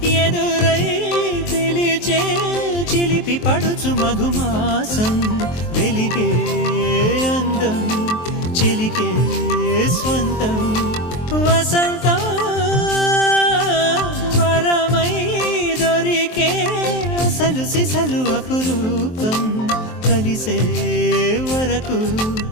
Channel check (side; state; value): right; late; 23 ms